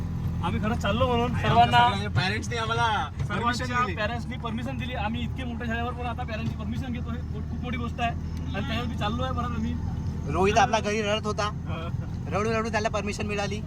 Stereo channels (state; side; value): identical; both; correlation 1.00